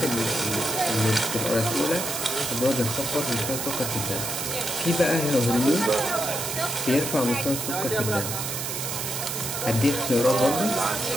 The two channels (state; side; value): noise; right; hiss, 4 dB below the sound